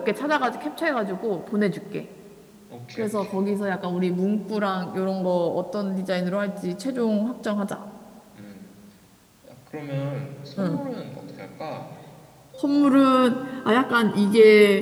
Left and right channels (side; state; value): both; identical; correlation 1.00